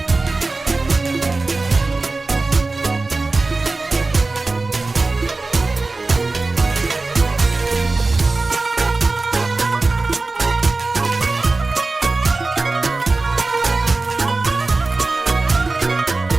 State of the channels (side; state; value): left; quieter; 3.5 dB